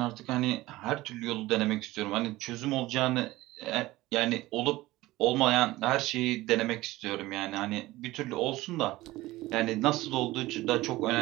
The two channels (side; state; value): left; quieter; 18.2 dB